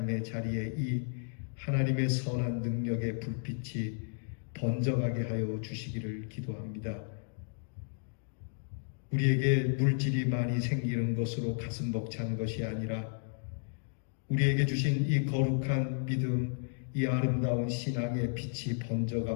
자리에 이 하나님의 선한 능력의 불빛이 번져가게 하여 주시기를 기도합니다. 우리에게 물질이 많이 생기는 것으로 가슴 벅찬 것이 아니라 우리에게 주신 이 거룩한 믿음, 이 아름다운 신앙의 빛이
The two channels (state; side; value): silent; right; digital silence